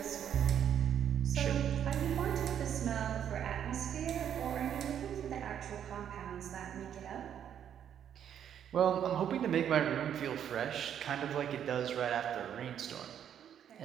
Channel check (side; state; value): left; quieter; 9.3 dB